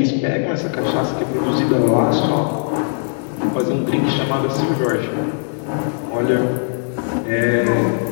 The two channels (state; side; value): silent; right; digital silence